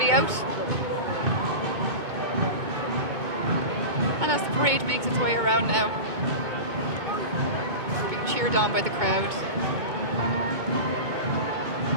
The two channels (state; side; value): late; left; 2.2 ms